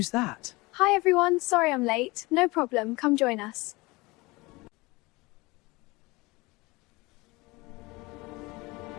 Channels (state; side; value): quieter; right; 23.3 dB